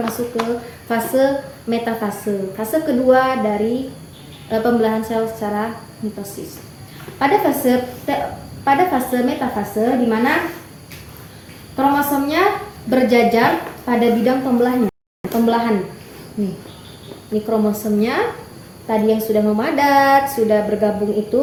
masuk ke fase metafase. Fase kedua dari pembelahan sel secara mitosis. Pada fase metafase, di mana kromosomnya berjajar pada bidang pembelahan. Ini kromosomnya tadi yang sudah memadat, sudah bergabung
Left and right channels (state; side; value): identical; both; correlation 1.00